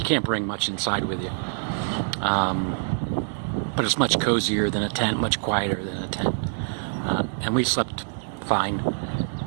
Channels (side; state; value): left; silent; digital silence